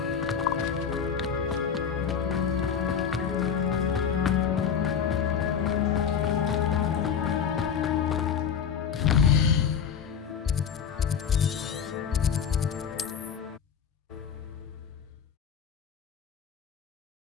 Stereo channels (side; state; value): right; quieter; 7.4 dB